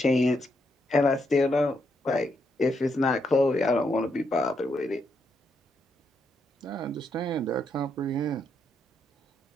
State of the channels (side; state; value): both; normal; correlation 0.78